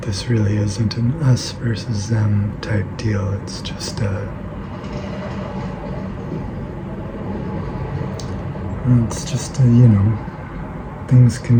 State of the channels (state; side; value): identical; both; correlation 1.00